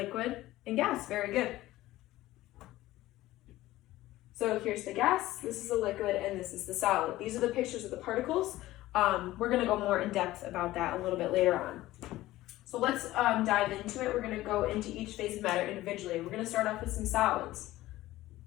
and gas. Very good. So here's the gas, this is the liquid, and this is the solid. These are the pictures of the particles. We're going to go more in depth about that a little bit later on. So let's dive into it. We're going to go into each phase of matter individually. We're going to start off with some solids.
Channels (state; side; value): quieter; right; 16.4 dB